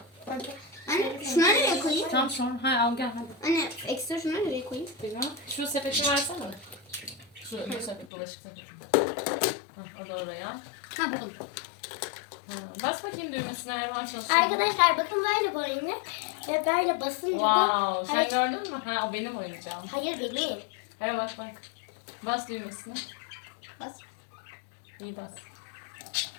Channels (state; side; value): drops out; right; at 8.1 s